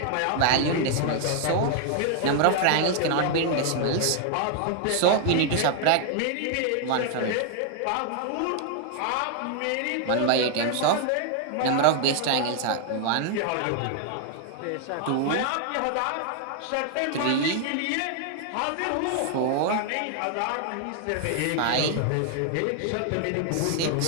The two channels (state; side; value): different; both; correlation 0.00